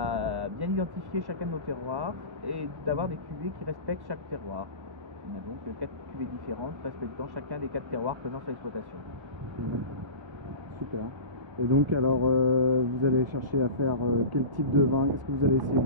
bien identifier chacun de nos terroirs et d'avoir des cuvées qui respectent chaque terroir. On a donc 4 cuvées différentes respectant chacun des 4 terroirs présents sur l'exploitation. Super. Et donc alors, vous allez chercher à faire quel type de vin? Qu'est-ce que vous allez essayer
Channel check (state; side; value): late; left; 1.1 ms